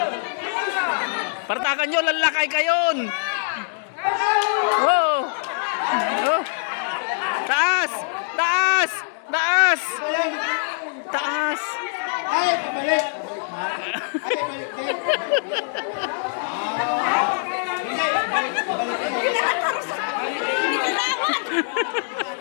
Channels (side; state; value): right; silent; digital silence